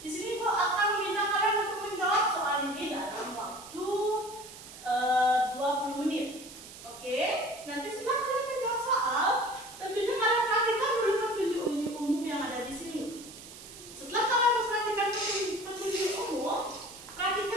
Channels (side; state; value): right; noise; hiss, 16 dB below the sound